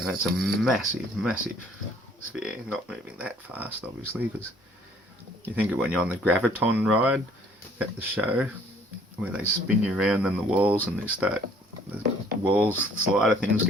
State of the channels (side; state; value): both; normal; correlation 0.58